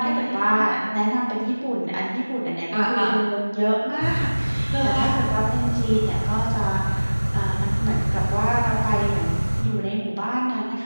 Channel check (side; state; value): both; inverted; correlation -1.00